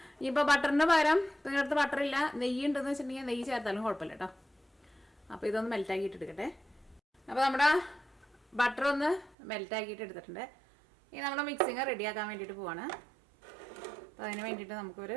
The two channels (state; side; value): drops out; left; at 9.3 s